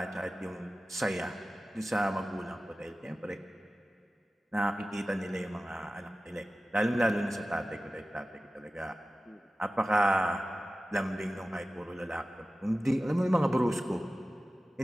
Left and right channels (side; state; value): both; normal; correlation 0.95